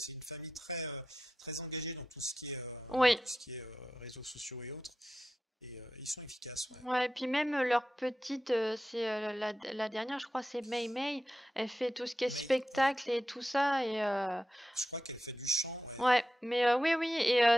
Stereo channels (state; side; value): normal; both; correlation 0.90